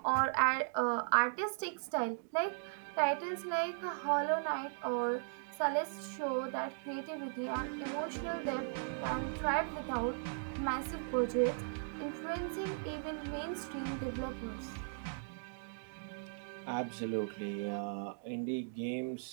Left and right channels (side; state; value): left; silent; digital silence